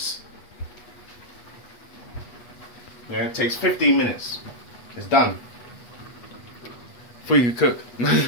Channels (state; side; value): late; right; 8.3 ms